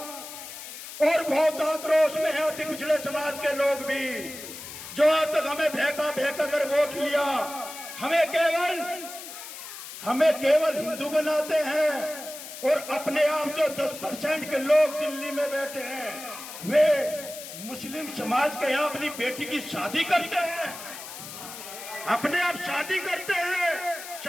और बहुत आक्रोश में है अति पिछड़े समाज के लोग भी, जो आज तक हमें भेका कर वोट लिया, हमें केवल हिंदू बनाते हैं। और अपने आप जो 10% के लोग दिल्ली में बैठे हैं, वे मुस्लिम समाज के यहाँ अपनी बेटी की शादी करते हैं, अपने आप शादी करते हैं,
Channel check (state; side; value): noise; left; hiss, 12 dB below the sound